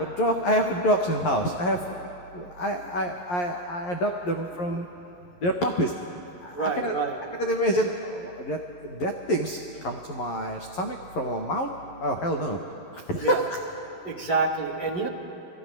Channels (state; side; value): late; right; 11 ms